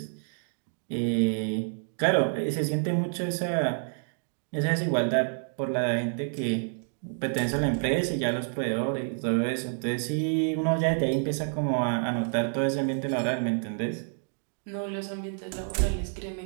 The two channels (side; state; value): left; silent; 59 dB below the other